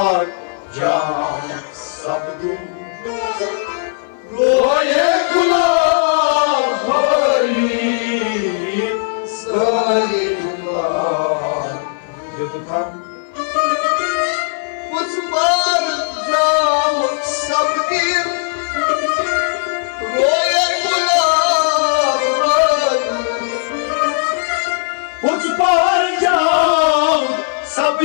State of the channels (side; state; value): right; silent; 57 dB below the other